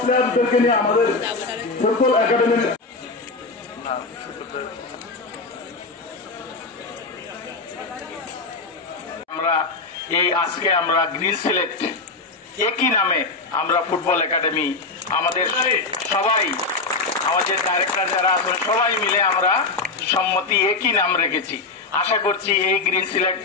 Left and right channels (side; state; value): right; quieter; 3.8 dB